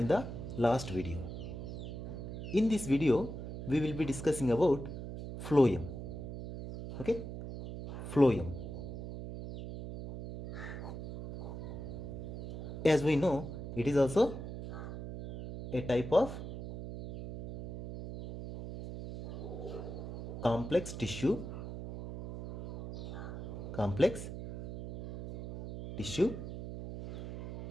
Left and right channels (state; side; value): noise; right; hum, 8 dB below the sound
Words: the last video. In this video we will be discussing about phloem. Okay, phloem. As we know, it is also a type of complex tissue.